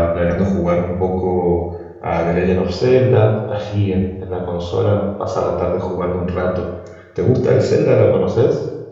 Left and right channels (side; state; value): both; identical; correlation 1.00